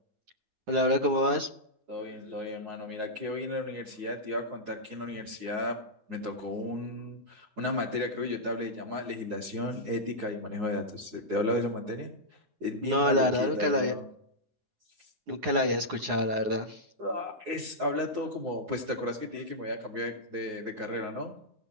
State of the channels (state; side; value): late; left; 9.6 ms